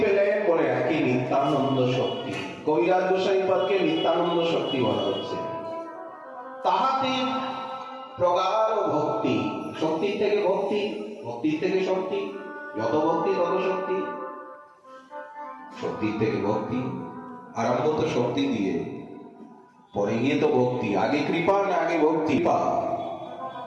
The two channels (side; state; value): both; identical; correlation 1.00